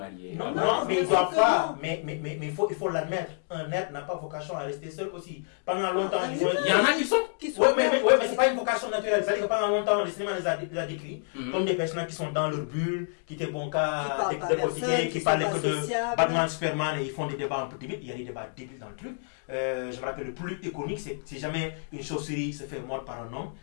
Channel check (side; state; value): right; silent; digital silence